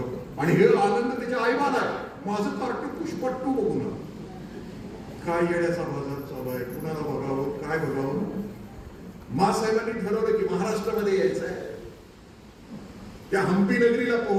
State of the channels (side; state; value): both; identical; correlation 1.00